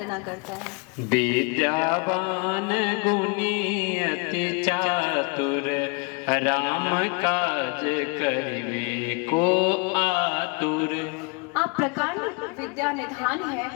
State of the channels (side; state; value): right; quieter; 32.2 dB